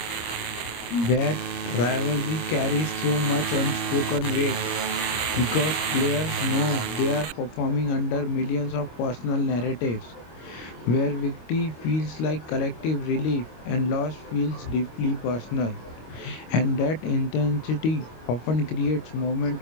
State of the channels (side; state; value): right; late; 25 ms